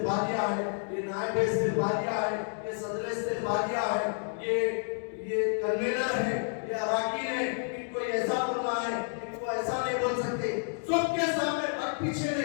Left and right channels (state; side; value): silent; right; 58 dB below the other